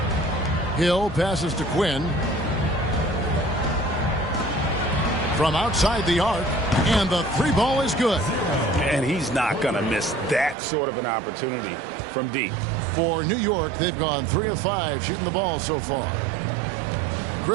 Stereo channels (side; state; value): left; drops out; at 10.6 s